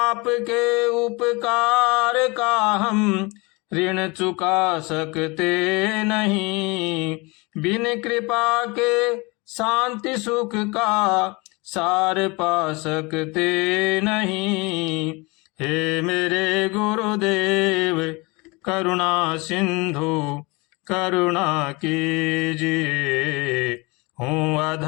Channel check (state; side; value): quieter; right; 26.4 dB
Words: उपकार का हम ऋण चुका सकते नहीं। बिन कृपा के शांति सुख का सार पा सकते नहीं। हे मेरे गुरुदेव करुणा सिंधु करुणा कीजिए। हूँ